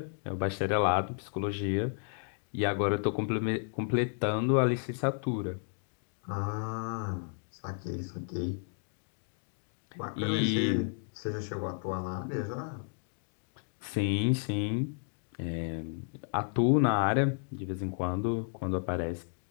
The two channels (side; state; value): right; silent; 56 dB below the other